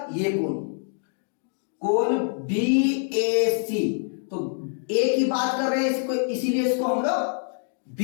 ये कोण, कोण बीएसी। तो ए की बात कर रहे हैं इसको, इसीलिए इसको हम लोग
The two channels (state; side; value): silent; right; 60 dB below the other